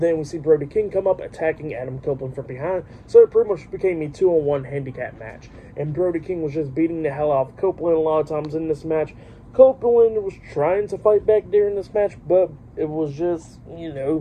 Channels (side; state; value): both; identical; correlation 1.00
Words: we see Brody King come up, attacking Adam Copeland from behind. So it pretty much became a 2-on-1 handicap match. And Brody King was just beating the hell out of Copeland a lot of times in this match. Copeland was trying to fight back during this match, but it was just,